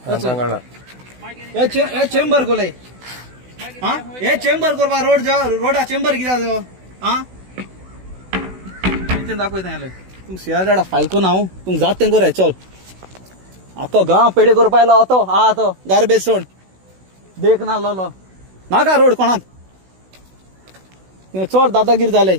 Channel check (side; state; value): left; late; 16 ms